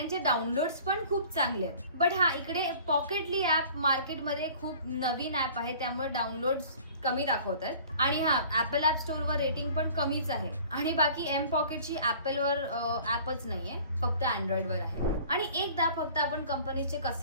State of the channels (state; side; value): inverted; both; correlation -0.48